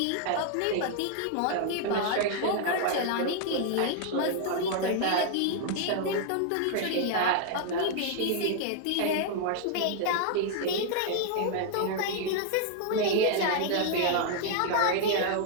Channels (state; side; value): different; both; correlation 0.00